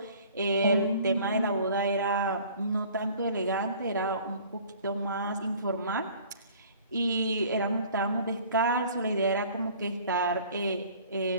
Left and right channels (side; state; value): both; inverted; correlation -0.51